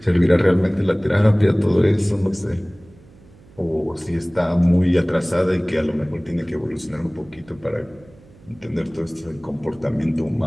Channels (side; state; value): right; noise; hum, 25 dB below the sound